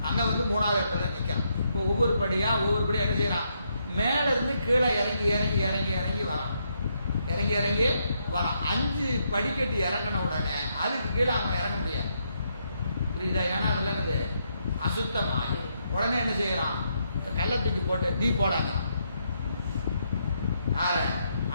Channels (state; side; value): inverted; both; correlation -0.78